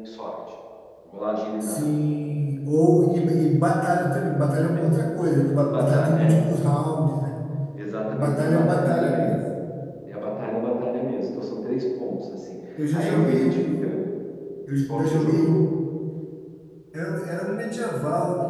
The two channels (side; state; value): both; identical; correlation 1.00